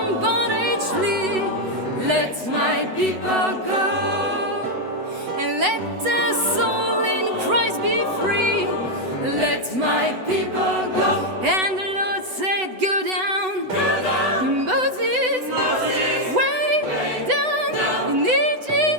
bondage flee. Let my people go. And let their soul in Christ be free. Let my people go. And the Lord said, go down. Moses, way down in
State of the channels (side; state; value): left; late; 8.0 ms